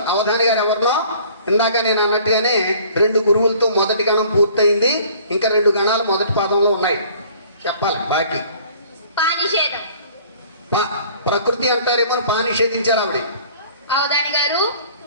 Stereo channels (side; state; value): both; inverted; correlation -0.52